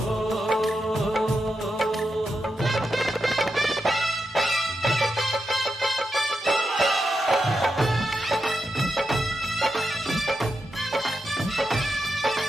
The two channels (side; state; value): both; normal; correlation 0.87